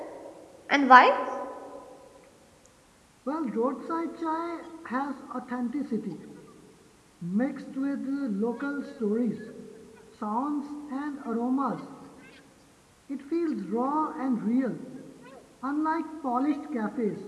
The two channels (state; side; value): identical; both; correlation 1.00